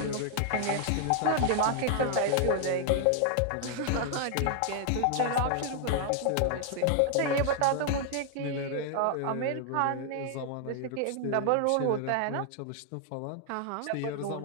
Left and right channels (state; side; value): different; both; correlation 0.00